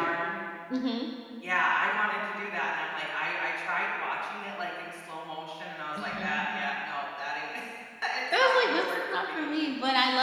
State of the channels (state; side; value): identical; both; correlation 1.00